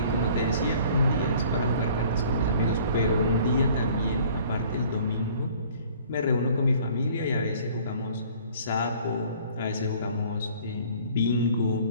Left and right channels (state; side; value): inverted; both; correlation -0.53